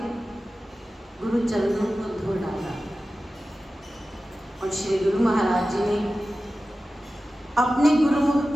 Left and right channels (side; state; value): both; normal; correlation 0.95